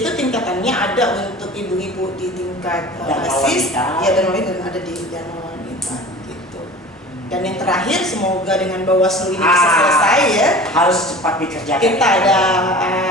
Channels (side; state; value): both; normal; correlation 0.39